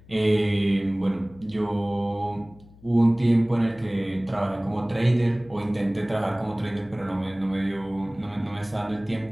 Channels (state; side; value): noise; left; hum, 24 dB below the sound